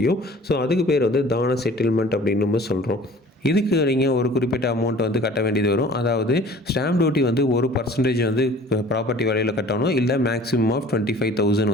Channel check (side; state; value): both; normal; correlation 0.48